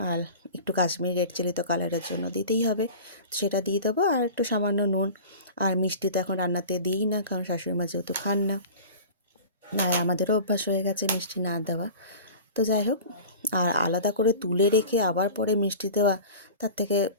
আর একটু কাশ্মীরি রেড চিলি তো কালারের জন্য দিতেই হবে, সেটা দিয়ে দেবো, আর একটু সামান্য নুন। আর মিষ্টি তো এখন রান্নাতে দিই না, কারণ শাশুড়ি মা যেহেতু খান না, আর আমাদেরও অভ্যাস হয়ে গেছে মিষ্টি না দেওয়া। তো যাই হোক, আর আলাদা করে তুলে রেখে আবার পরে মিষ্টি দেওয়া, তার থেকে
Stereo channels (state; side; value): inverted; both; correlation -0.38